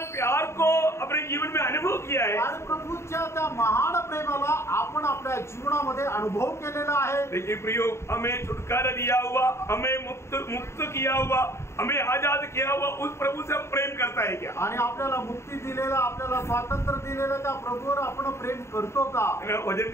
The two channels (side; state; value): right; late; 0.13 ms